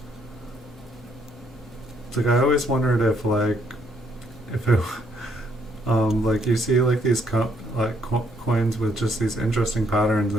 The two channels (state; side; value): normal; both; correlation 0.71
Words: It's like I always wondered if it like you see like these coins with just these interesting patterns,